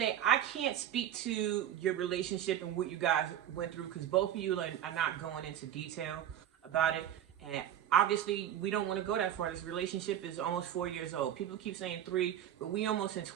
I can't speak to your relationship and what you guys went through because both of you are not going into detail about it. And obviously, we don't want to go that far. This relationship is almost 4 years old. People keep saying 3, but we almost in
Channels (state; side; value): quieter; left; 10.8 dB